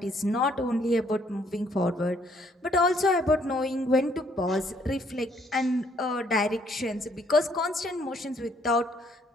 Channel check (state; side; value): normal; both; correlation 0.66